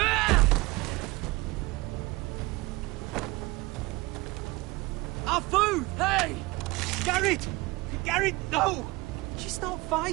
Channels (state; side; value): quieter; left; 22.1 dB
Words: Our food! Hey! Garrett! Garrett, no! She's not